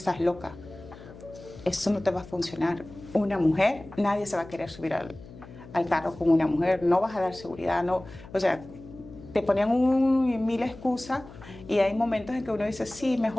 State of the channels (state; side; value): noise; left; hum, 18 dB below the sound